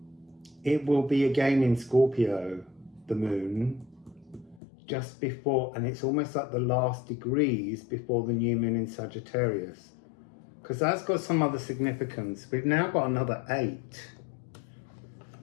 it will be again in Scorpio, the moon, just before, and it's almost like the last degrees before the new moon in Sagittarius, because that's got some other significance. We've now got another 8.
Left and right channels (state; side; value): drops out; right; at 4.6 s